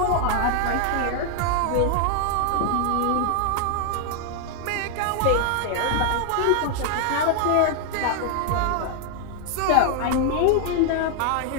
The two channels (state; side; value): different; both; correlation 0.00